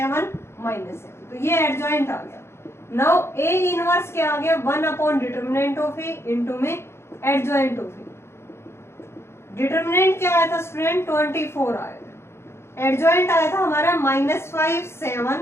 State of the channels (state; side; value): late; right; 0.12 ms